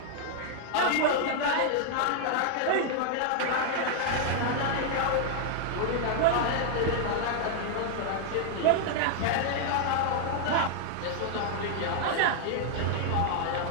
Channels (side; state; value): both; different; correlation 0.00